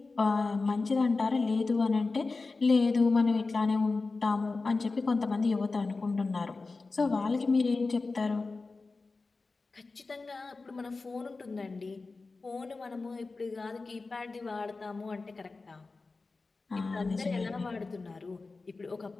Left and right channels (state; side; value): quieter; right; 3.8 dB